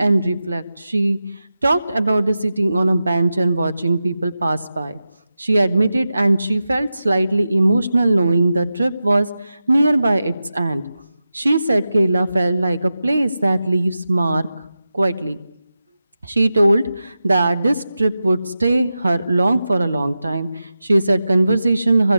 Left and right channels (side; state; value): both; inverted; correlation -0.92